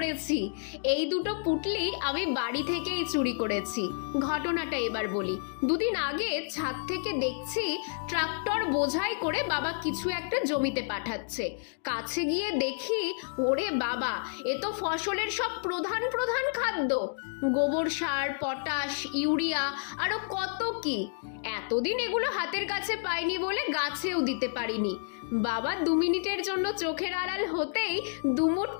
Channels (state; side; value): silent; right; digital silence